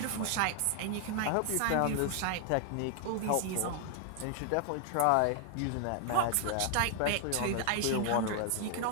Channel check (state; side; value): different; both; correlation 0.00